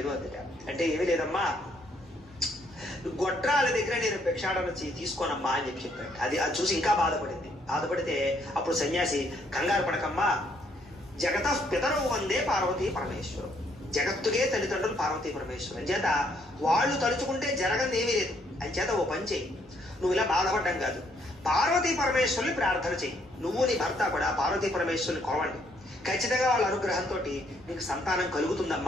అందుట. అంటే ఏమీ లేదమ్మా, గొడ్రాల దగ్గర నేను భిక్షాటన తీసుకోనమ్మా అని చెప్పాడు. అది చూసి ఇంకా బాధపడితే అప్పుడు సన్యాసి కంగారు పడకమ్మా, జగత పితరవు వందే పార్వతీ పరమేశ్వరం, జగత్తుకే తల్లిదండ్రులు పార్వతీ పరమేశ్వరం చేత వాళ్ళు తలుచుకుంటే జరగని ఏమీ లేదు. అని చేత ఓ పని చెయ్యి, నువ్వు ఇలా బాధపడ్డం కాదు, పార్వతీ పరమేశ్వరుని ప్రార్థన చెయ్యి, నువ్వు నీ భర్త కూడా పార్వతీ పరమేశ్వరుని కొలవండి, ఖచ్చితంగా వాళ్ళ అనుగ్రహంతో నీకు సంతానం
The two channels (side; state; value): both; normal; correlation 0.69